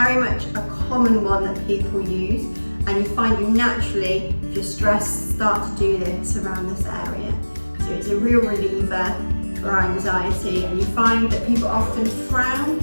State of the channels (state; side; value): inverted; both; correlation -1.00